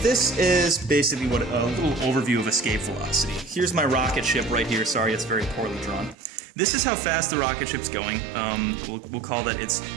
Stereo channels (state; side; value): drops out; left; at 6.2 s